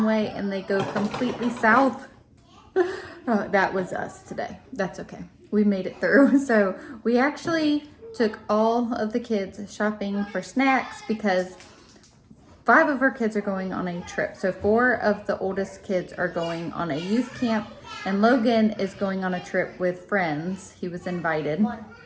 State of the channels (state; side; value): identical; both; correlation 1.00